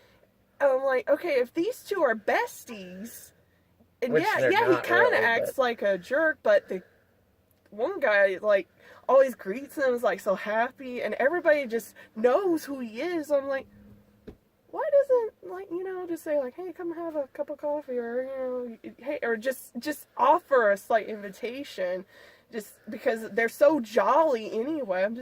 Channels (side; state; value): both; identical; correlation 1.00